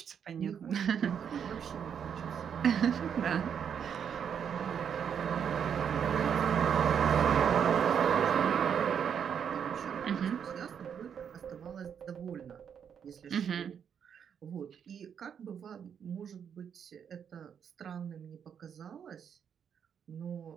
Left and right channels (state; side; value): quieter; left; 7.8 dB